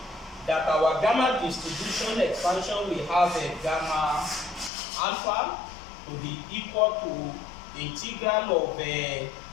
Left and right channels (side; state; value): right; drops out; at 4.7 s